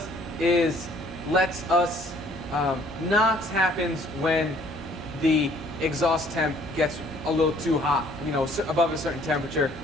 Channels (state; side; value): normal; both; correlation 0.59